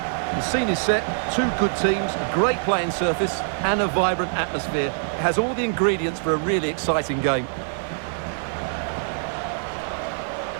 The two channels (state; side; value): silent; left; digital silence